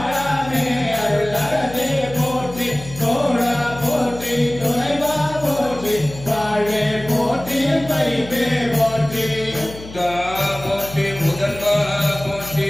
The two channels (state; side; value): noise; left; hum, 15 dB below the sound